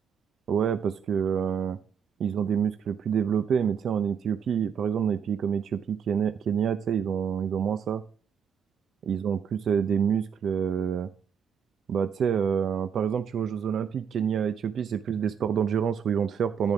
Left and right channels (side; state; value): left; quieter; 7.4 dB